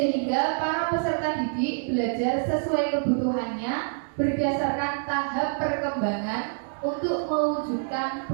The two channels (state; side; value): silent; left; digital silence